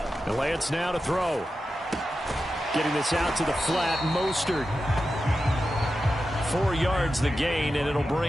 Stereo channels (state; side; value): normal; both; correlation 0.91